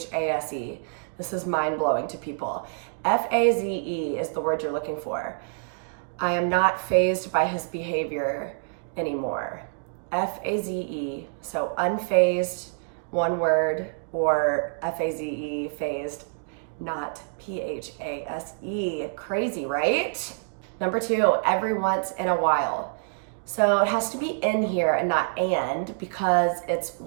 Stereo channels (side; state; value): left; silent; digital silence